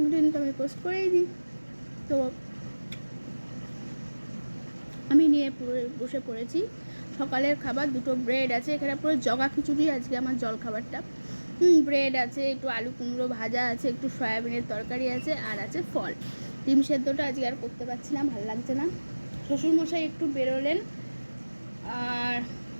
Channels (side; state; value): both; inverted; correlation -1.00